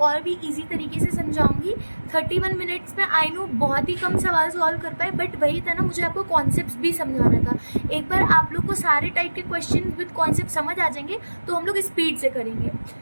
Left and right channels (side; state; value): both; inverted; correlation -1.00